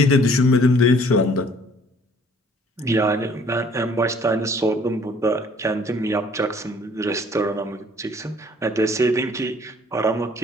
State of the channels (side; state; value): both; normal; correlation 0.57